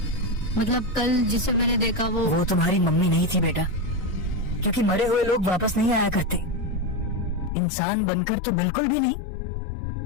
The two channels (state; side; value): drops out; right; at 7.5 s